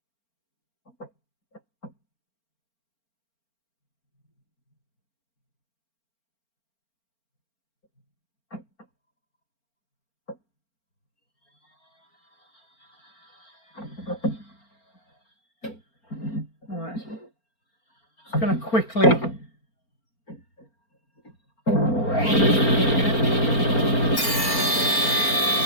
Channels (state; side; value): late; right; 4.4 ms